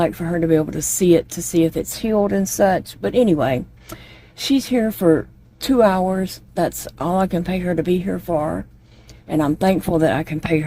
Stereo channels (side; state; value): both; identical; correlation 1.00